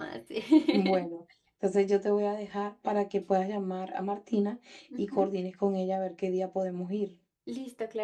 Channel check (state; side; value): identical; both; correlation 1.00